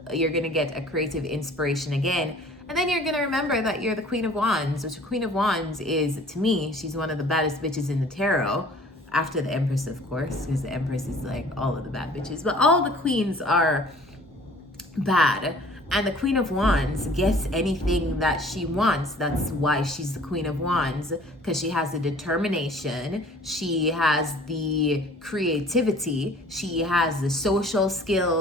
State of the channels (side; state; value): both; normal; correlation 0.51